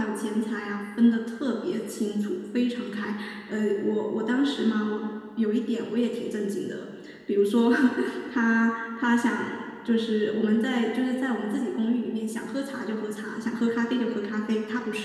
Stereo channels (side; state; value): both; identical; correlation 1.00